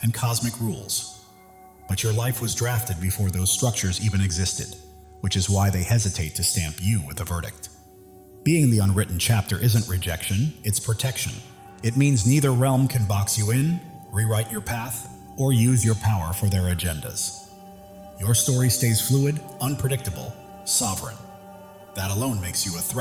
and cosmic rules. But your life was drafted before those structures even existed, which is why they hesitate to stamp you with a verdict. Being the unwritten chapter isn't rejection, it's protection. It means neither realm can box you in, rewrite your path, or use your power for their agendas. Your story stays fluid, unpredictable, sovereign. That alone makes you a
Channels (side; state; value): both; identical; correlation 1.00